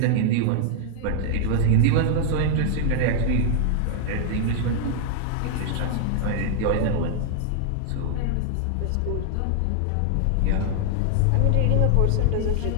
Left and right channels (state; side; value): different; both; correlation -0.01